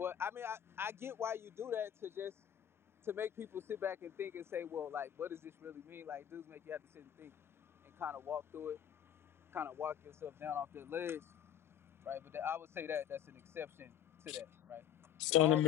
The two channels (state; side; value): quieter; right; 9.9 dB